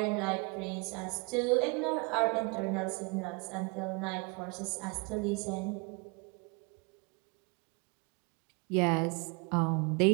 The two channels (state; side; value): quieter; left; 30.6 dB